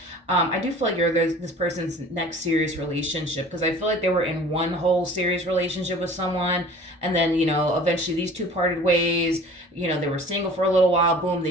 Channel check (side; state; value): both; normal; correlation 0.45